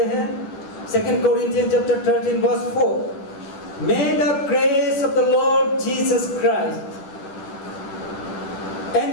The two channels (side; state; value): right; late; 11 ms